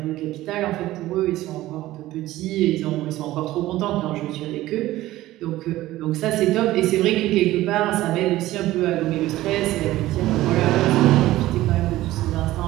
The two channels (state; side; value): quieter; left; 16.1 dB